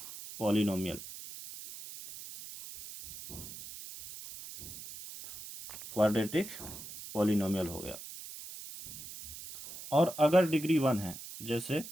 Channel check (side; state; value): right; noise; hiss, 12 dB below the sound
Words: पॉलिनोमियल। क्वाड्रेटिक पॉलिनोमियल हो गया। और अगर डिग्री 1 है, जैसे